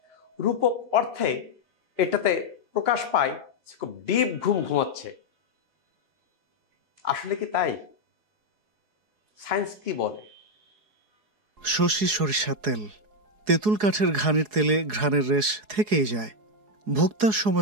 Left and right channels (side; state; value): left; late; 4.8 ms